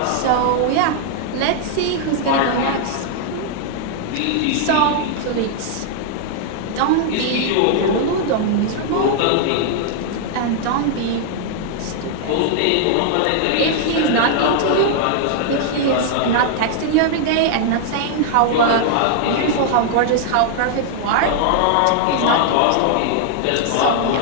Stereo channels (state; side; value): different; both; correlation -0.01